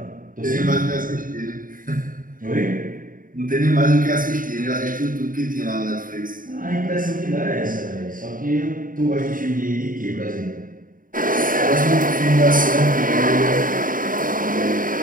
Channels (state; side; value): late; left; 0.40 ms